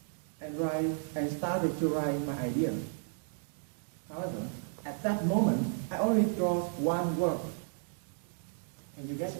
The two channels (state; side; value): silent; left; 55 dB below the other